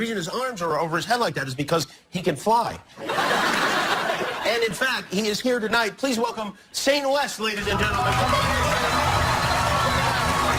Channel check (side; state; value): both; identical; correlation 1.00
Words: his arms are over his head like that is because he can fly. And in fact, he is here tonight. Please welcome Saint West, ladies and gentlemen.